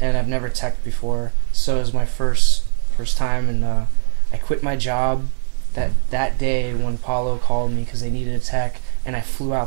I've never teched before, so it was my first time, and I quit my job that day when Paulo called me because they needed a tech, and I flew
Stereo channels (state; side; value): silent; left; digital silence